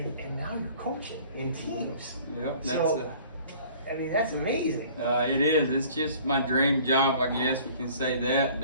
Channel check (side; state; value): both; inverted; correlation -0.51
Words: now you're coaching in teams. Yep, I mean, that's amazing. It is. It's just my dream job, I guess we can say that.